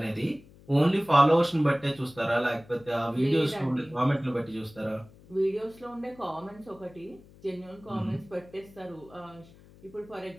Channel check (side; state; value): left; noise; hum, 24 dB below the sound